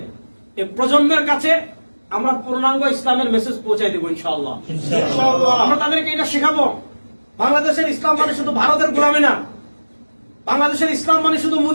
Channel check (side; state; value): both; inverted; correlation -1.00